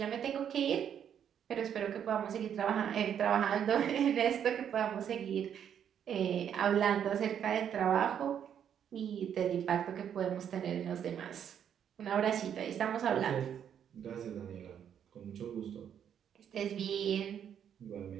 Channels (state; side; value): quieter; left; 8.9 dB